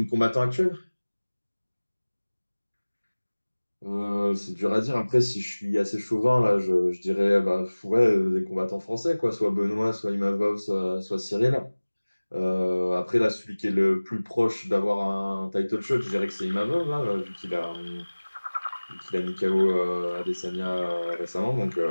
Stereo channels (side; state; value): both; inverted; correlation -1.00